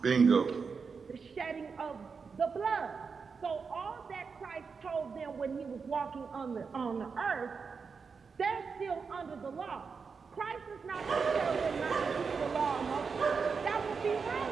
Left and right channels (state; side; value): quieter; left; 5.3 dB